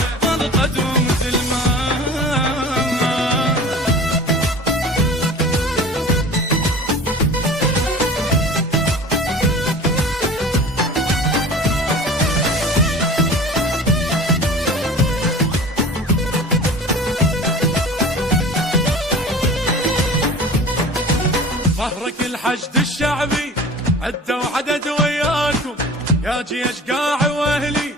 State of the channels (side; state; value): both; normal; correlation 0.39